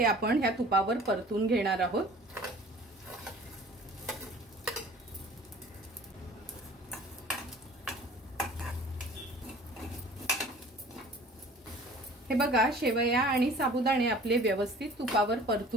आपण ह्या तुपावर परतून घेणार आहोत। हे बघा शेवया आणि साबुदाणे आपले व्यवस्थित तुपावर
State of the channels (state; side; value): normal; both; correlation 0.47